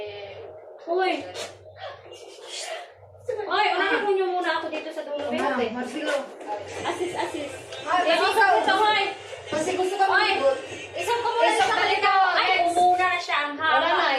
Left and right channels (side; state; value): both; identical; correlation 1.00